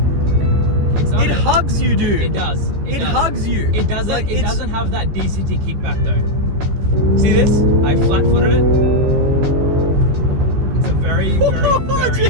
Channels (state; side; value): late; left; 14 ms